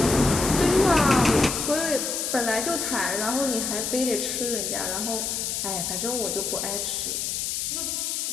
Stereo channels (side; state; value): left; noise; hiss, 2 dB below the sound